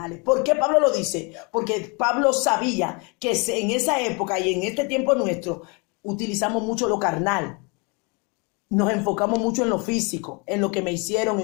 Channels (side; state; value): right; quieter; 31.2 dB